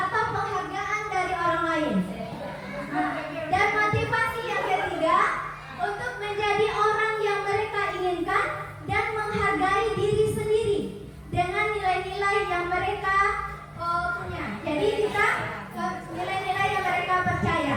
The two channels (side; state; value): both; identical; correlation 1.00